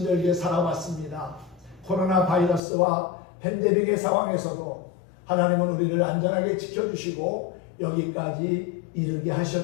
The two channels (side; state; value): right; drops out; at 2.6 s